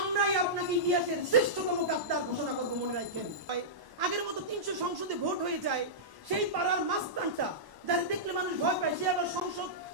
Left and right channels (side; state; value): left; late; 1.1 ms